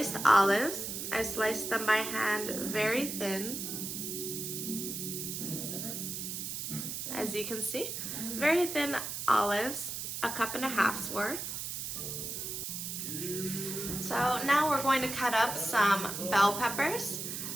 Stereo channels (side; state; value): right; noise; hiss, 5 dB below the sound